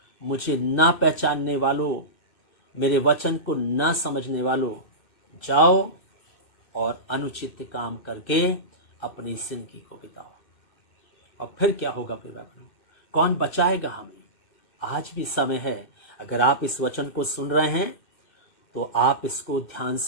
मुझे ना पहचानने वालों, मेरे वचन को ना समझने वालों, जाओ और अनुचित काम करके अपनी जिंदगी को बिताओ। और फिर क्या होगा प्रिय भाइयों, कौन बचाएगा हमें? आज भी समय है। अगर आप इस वचन को सुन रहे हैं तो आप इसको ध्यान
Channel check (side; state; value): right; late; 2.6 ms